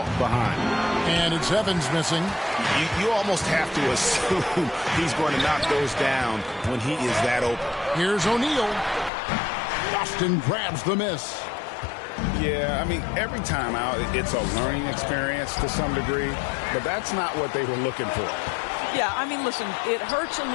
behind. And it's Evans missing. You almost have to assume he's going to knock those down when he is that open. Here's O'Neal. Boston grabs the miss. Yeah, I mean, every time out, it's a learning experience to some degree, but that's not what they were looking for. Yeah, I mean, listen, it hurts a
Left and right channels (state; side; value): drops out; right; at 9.1 s